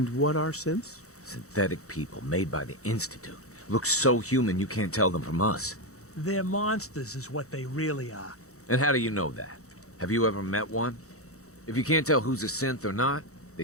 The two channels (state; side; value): late; right; 0.65 ms